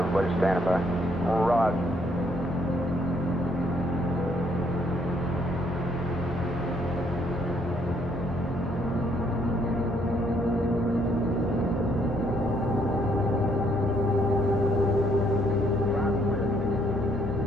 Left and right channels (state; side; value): normal; both; correlation 0.70